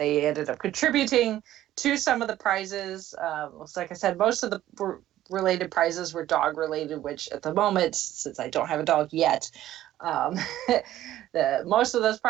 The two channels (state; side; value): quieter; left; 13.5 dB